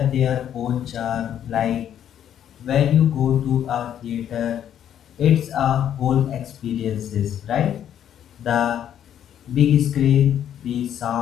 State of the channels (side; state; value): right; quieter; 10.0 dB